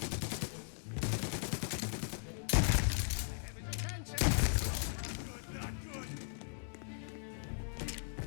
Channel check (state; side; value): silent; right; digital silence